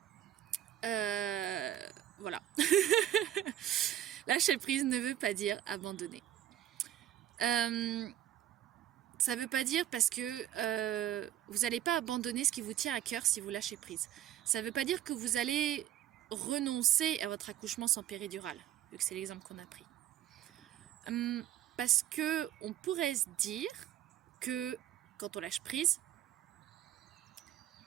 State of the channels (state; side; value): quieter; left; 12.1 dB